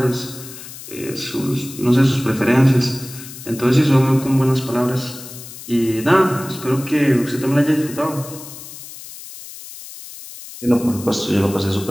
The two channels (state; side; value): noise; left; hiss, 14 dB below the sound